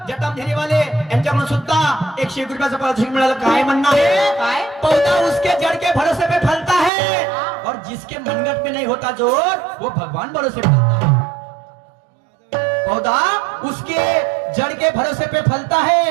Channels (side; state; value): left; drops out; at 6.9 s